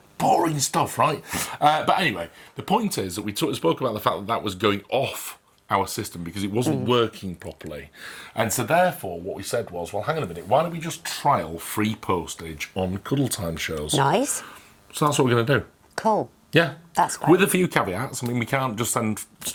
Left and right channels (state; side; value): identical; both; correlation 1.00